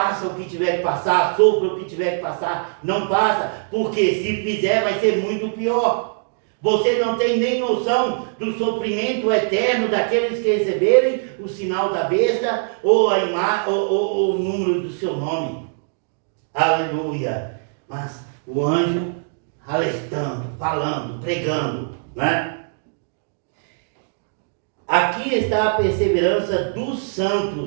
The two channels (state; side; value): silent; left; digital silence